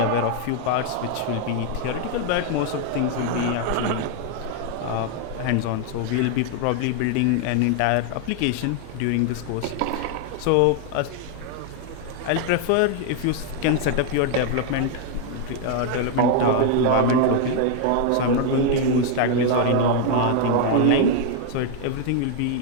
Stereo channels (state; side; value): different; both; correlation 0.00